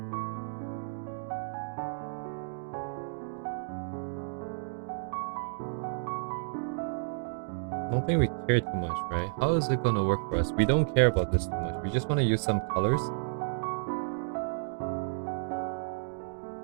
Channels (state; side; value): silent; left; digital silence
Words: I don't think we care too much, right? How is it gonna work for us? We don't care about this too much. We just want to use some colors.